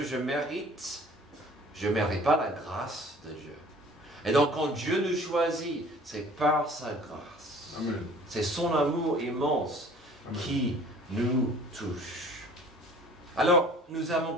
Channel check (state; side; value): normal; both; correlation 0.49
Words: je mérite, je ne mérite pas la grâce de Dieu. Et donc quand Dieu nous choisit, c'est par sa grâce. Amen. C'est son amour immense Amen. Qui nous touche. Alors, nous avons